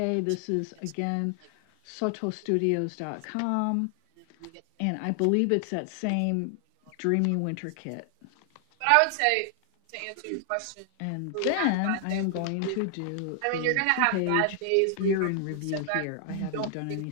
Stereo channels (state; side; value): different; both; correlation 0.00